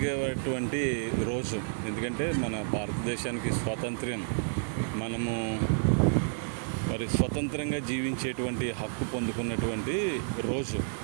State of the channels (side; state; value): left; silent; 58 dB below the other